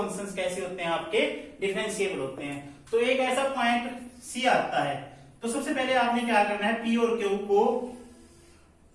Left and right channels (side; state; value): both; identical; correlation 1.00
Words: कैसे होते हैं आपके, डिफरेंशिएबल होते हैं। तो एक ऐसा पॉइंट सी आता है, तो सबसे पहले आपने क्या करना है, पी और क्यू को